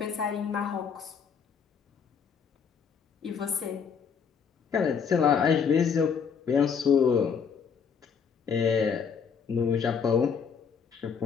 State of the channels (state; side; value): quieter; right; 6.6 dB